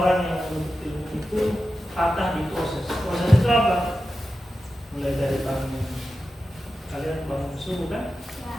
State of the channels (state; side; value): normal; both; correlation 0.92